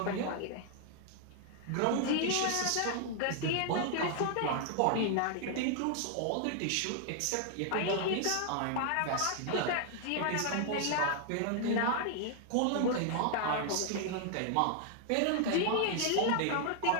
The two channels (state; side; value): different; both; correlation 0.00